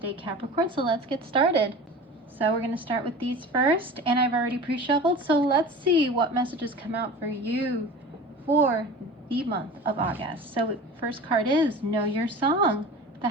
Capricorn, so let's get started. So we're going to start with these first, and I've already pre-shuffled, so let's see what messages come out for you for the month of August. So first card is Know Your Song, the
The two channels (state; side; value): normal; both; correlation 0.36